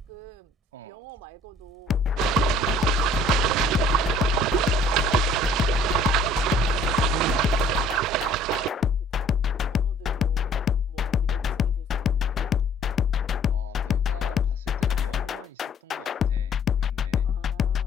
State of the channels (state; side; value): normal; both; correlation 0.56